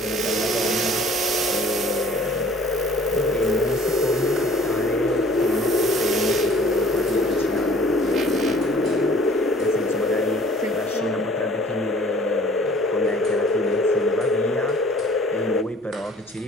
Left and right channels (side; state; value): both; normal; correlation 0.53